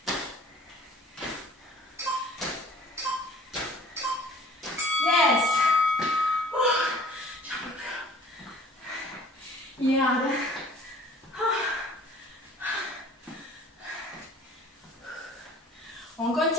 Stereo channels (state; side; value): normal; both; correlation 0.50